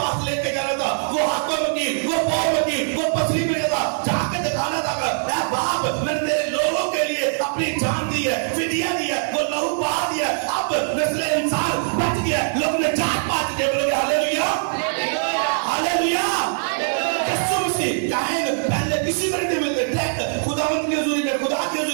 लेके जाना था, वो हाथों में की, वो पाँव में की, वो पसली में था, जाके दिखाना था बाप मैंने तेरे लोगों के लिए अपनी जान दी है, फिदिया दी है, वो लहू बहा दिया, अब नस्ल इंसान बच गया, लोग ने जात पात के बोलोगे हालेलुया, हालेलुया। यीशु मसीह काहिन पहले किसी को नहीं मिलते थे, खुदावंत के हुजूरी में, खुदा के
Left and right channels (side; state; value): left; silent; digital silence